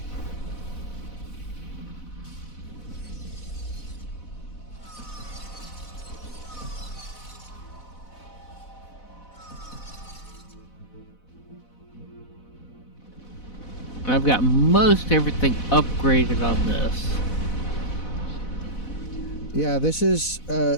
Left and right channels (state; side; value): late; right; 4.0 ms